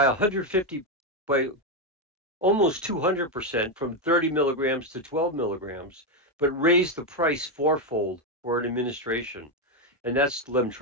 150 by almost 200% from 30 milligrams to 12 milligrams, but raised the price fourfold for an administration. And that's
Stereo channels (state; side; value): normal; both; correlation 0.06